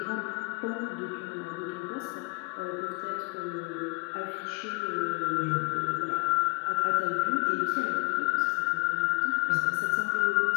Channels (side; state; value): right; quieter; 32.5 dB